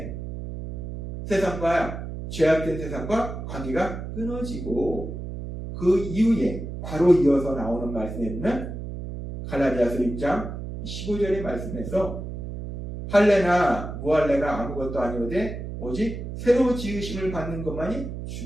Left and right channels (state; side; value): noise; right; hum, 8 dB below the sound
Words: 세상과 죄악된 세상과 관계가 끊어지고 그 이후에 바로 이어서 나오는 말씀에 보면 갈라디아서 6장 15절의 말씀에서 할례나 무할례가 아무것도 아니오되 오직 새로 지으심을 받는 것만이